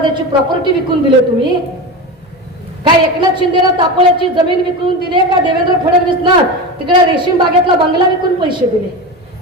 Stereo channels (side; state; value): both; normal; correlation 0.23